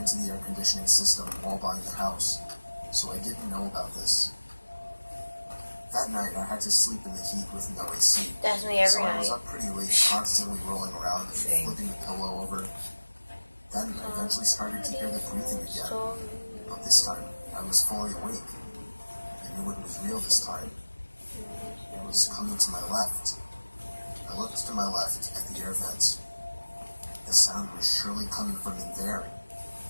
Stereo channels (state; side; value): inverted; both; correlation -1.00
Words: the air conditioning system while buying the house, so I didn't know about this. That night, I had to sleep in the heat with no AC. That's me every So I was night. up pretty late, constantly rolling around and Same. flipping the pillow over. Then I eventually started to hear the breathing again, but this time I was fully awake. I knew it was real this time. It was coming to my left. I looked to my left at the air vents. The sound was surely coming from in there.